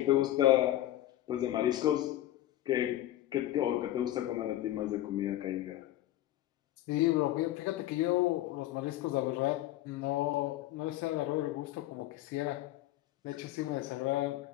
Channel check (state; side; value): quieter; right; 14.5 dB